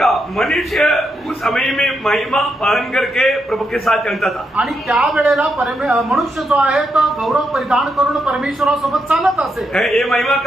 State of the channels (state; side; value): normal; both; correlation 0.82